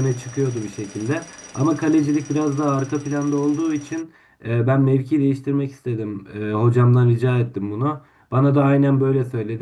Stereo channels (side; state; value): both; identical; correlation 1.00